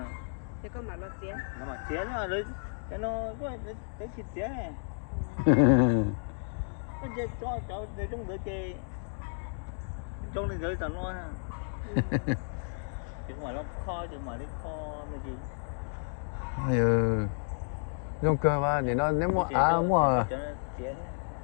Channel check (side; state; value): right; silent; digital silence